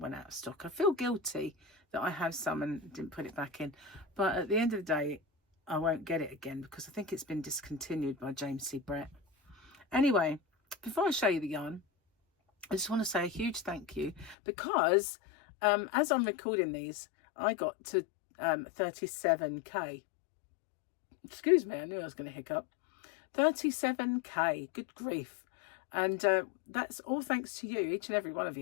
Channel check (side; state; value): right; drops out; at 14.4 s